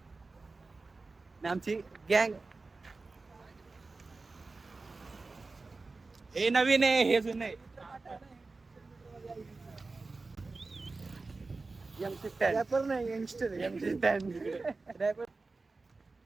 आमची गँग हे नवीन आहे, हे जुनं आहे. रॅपर नाही, यंगस्टर रॅपर.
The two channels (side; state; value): left; quieter; 3.7 dB